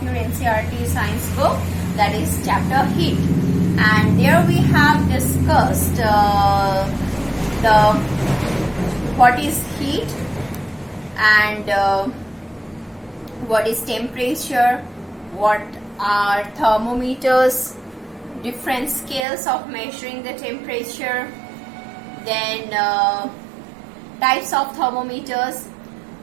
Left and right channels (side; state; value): left; drops out; at 19.2 s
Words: your NCERT science book, that is chapter heat. And there we have discussed what is heat and what is temperature, what are thermometers, different scales of measuring the temperature, then types of thermometers,